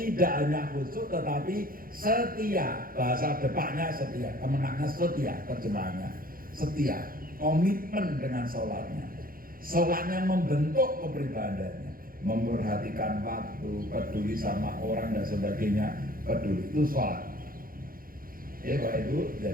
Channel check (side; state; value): left; late; 0.42 ms